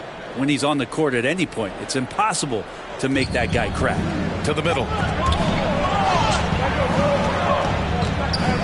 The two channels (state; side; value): identical; both; correlation 1.00